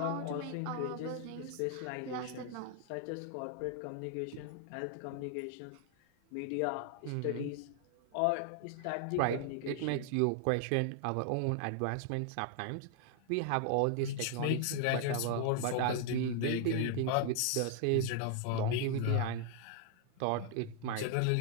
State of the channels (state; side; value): different; both; correlation 0.00